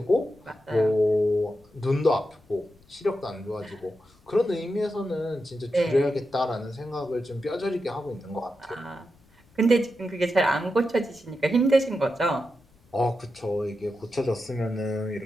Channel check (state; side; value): noise; left; rumble, 30 dB below the sound